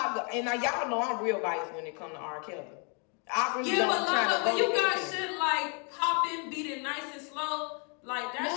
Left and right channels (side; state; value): right; quieter; 36.5 dB